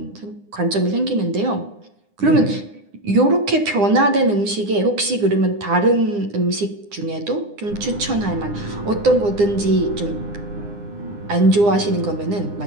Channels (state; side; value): late; left; 9.8 ms